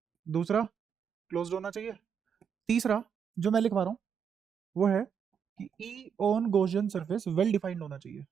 दूसरा, क्लोज्ड होना चाहिए। तीसरा, जो मैं लिखवा रहा हूँ वो है कि ई on Gaussian surface well defined होना चाहिए।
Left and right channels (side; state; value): left; quieter; 7.3 dB